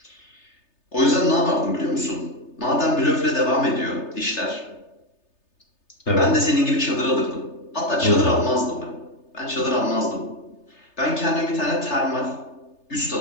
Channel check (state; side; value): late; right; 3.3 ms